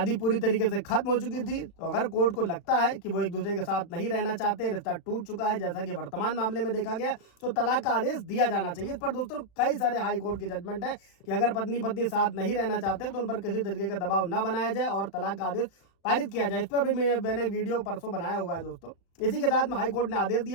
पूरी तरीके से खत्म हो चुकी थी तो अगर कोर्ट को लगता है कि वो एक दूसरे के साथ नहीं रहना चाहते, रिश्ता टूट चुका है जैसा कि वर्तमान मामले में देखा गया, तो तलाक का आदेश दिया जाना चाहिए। इस पर दोस्तों कई सारे हाई कोर्ट के जजमेंट है कि अगर पत्नी साथ नहीं रहना चाहते तो उन पर किसी तरीके का दबाव न बनाया जाए और तलाक का आदेश पारित किया जाए। इस पर भी मैंने वीडियो परसों बनाया हुआ है दोस्तों। इसी के साथ में हाई कोर्ट ने आदेश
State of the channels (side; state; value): right; late; 36 ms